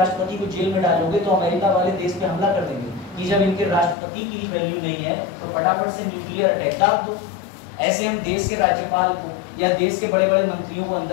को जेल में डालोगे तो अमेरिका वाले देश पे हमला कर देंगे कि जब इनके राष्ट्रपति की वैल्यू नहीं है तो फटाफट से न्यूक्लियर अटैक दाब दो। ऐसे हम देश के राज्यपाल को या देश के बड़े बड़े मंत्रियों को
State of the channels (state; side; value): drops out; right; at 4.0 s